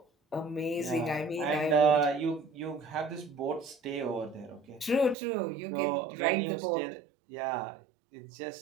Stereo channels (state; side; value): drops out; left; at 5.2 s